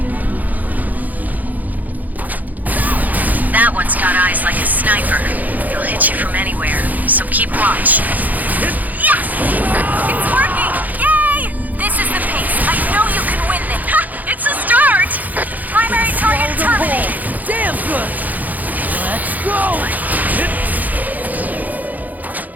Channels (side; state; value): left; late; 0.081 ms